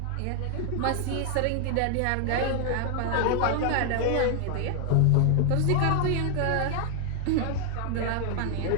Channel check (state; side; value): different; both; correlation 0.00